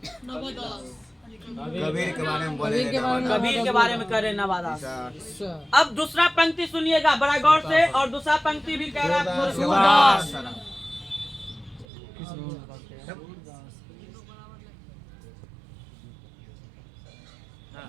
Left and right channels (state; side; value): drops out; left; at 11.9 s